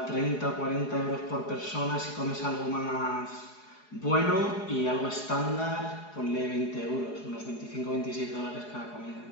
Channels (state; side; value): late; right; 4.8 ms